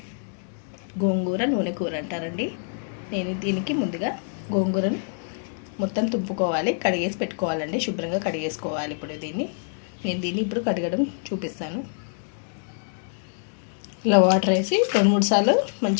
గోంగూర నూనె కూర అంటారండి. నేను దీనికి ముందుగా గోంగూరను మొత్తం తుంపుకోవాలి, కడిగేసి పెట్టుకోవాలండి. శుభ్రంగా కడిగేసుకోవాలి. ఇప్పుడు నేను ఇప్పుడు కడగడం చూపిస్తాను. ఇలా వాటర్ వేసి 2-3 సార్లు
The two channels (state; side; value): silent; right; digital silence